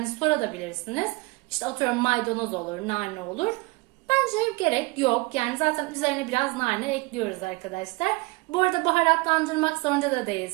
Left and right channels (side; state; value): left; quieter; 25.1 dB